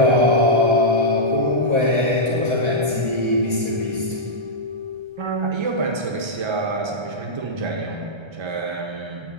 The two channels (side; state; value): left; late; 1.3 ms